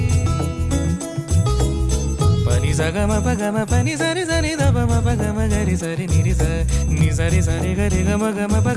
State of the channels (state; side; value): identical; both; correlation 1.00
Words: पनि सगम पगम पनि सरि सरि दपम पगम गरि सरि निरि स नि सरि सरि गरि गम गम